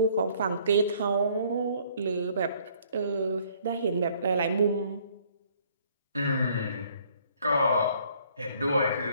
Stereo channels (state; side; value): inverted; both; correlation -0.61